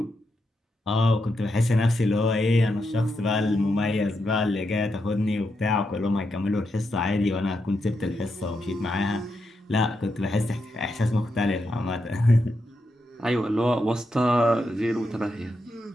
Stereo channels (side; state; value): both; normal; correlation 0.84